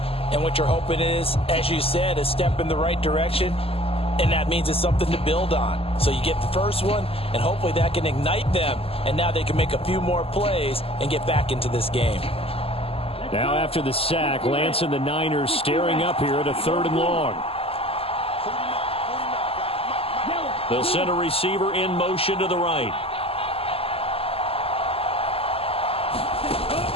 And what you're hoping is, as you said, a step in the right direction, and that means it's something to build on. So you get the first one, and hopefully that can ignite them, and now they can make a few more plays and get back into this game. Now after the sack, Lance and the Niners staring up here at a 3rd and long. They'll send a receiver in motion to the right.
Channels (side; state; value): right; late; 0.28 ms